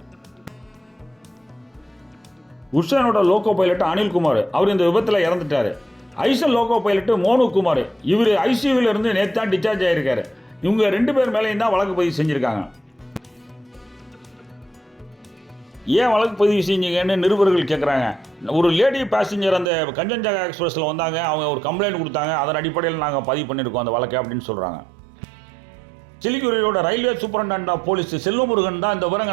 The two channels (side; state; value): left; drops out; at 19.7 s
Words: குட்ஷைனோட லோகோ பைலட் அனில்குமார் அவர் இந்த விபத்தில் இறந்துட்டார். ஐசன் லோகோ பைலட் மோனு குமார் இவர் ஐசியூவில் இருந்து நேற்று தான் டிஸ்சார்ஜ் ஆகியிருக்காரு. இவங்க 2 பேர் மேலேயும் தான் வழக்கு பதிவு செஞ்சுருக்காங்க. ஏன் வழக்கு பதிவு செஞ்சீங்கன்னு நிருபர்கள் கேட்குறாங்க. ஒரு லேடி பேசஞ்சர் அந்த கஞ்சன்ஜங்கா எக்ஸ்பிரஸில் வந்தாங்க, அவங்க ஒரு கம்ப்ளைண்ட் கொடுத்தாங்க, அதன் அடிப்படையில் நாங்கள் பதிவு பண்ணியிருக்கோம் அந்த வழக்கை அப்படின்னு சொல்கிறாங்க. சிலிகுரியோட railway superintendent of police Selvamurugan தான் இந்த